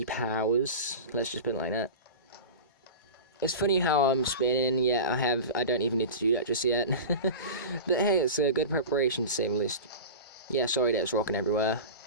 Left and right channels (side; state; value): both; inverted; correlation -0.30